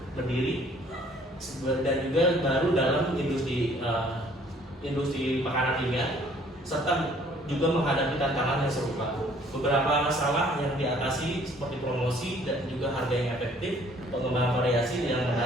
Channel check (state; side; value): normal; both; correlation 0.58